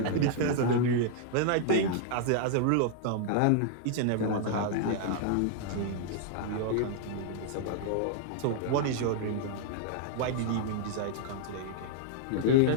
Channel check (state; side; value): different; both; correlation 0.00